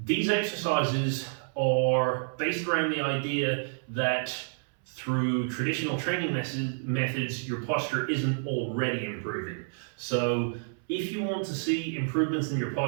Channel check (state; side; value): silent; left; 58 dB below the other